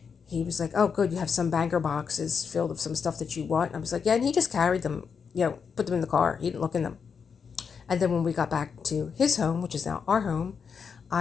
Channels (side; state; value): right; quieter; 6.2 dB